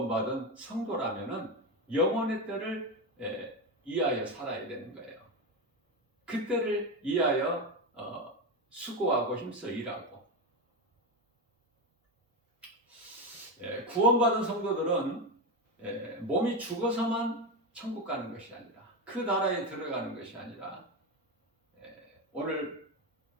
성도라면 영혼의 때를 위하여 살아야 되는 거예요. 그 때를 위하여 수고하고 힘써 일하고. 구원받은 성도들은 몸이 죽어서만 천국 가는 것이 아니라, 그 나라에 들어가는 것이 아니라, 오늘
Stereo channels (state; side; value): normal; both; correlation 0.14